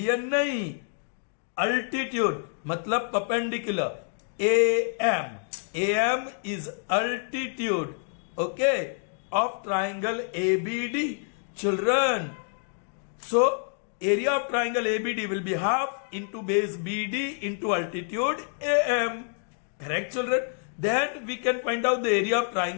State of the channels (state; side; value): silent; right; 60 dB below the other